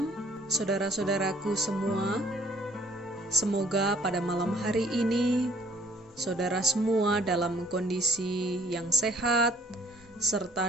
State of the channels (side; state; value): both; normal; correlation 0.60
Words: saudara-saudaraku semua. Semoga pada malam hari ini saudara semua dalam kondisi yang sehat